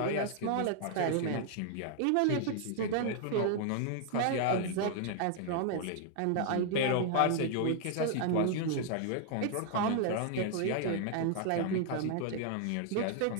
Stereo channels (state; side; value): different; both; correlation 0.00